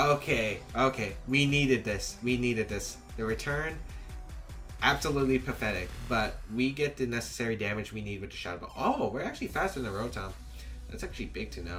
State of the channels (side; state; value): both; identical; correlation 1.00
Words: We needed this. The return, absolutely pathetic, but we get the necessary damage we need with the Shadow Ball. Oh, we're actually faster than the Rotom. That's actually big to